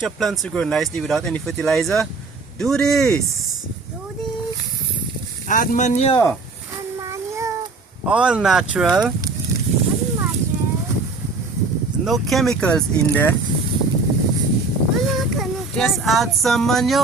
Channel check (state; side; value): quieter; left; 3.8 dB